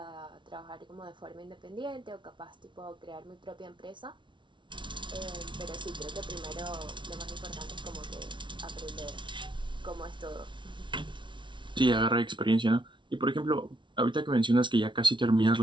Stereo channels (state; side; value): late; left; 0.24 ms